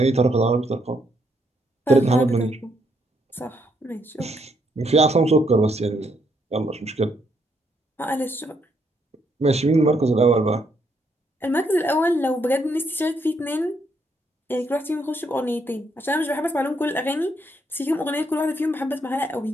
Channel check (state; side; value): normal; both; correlation 0.74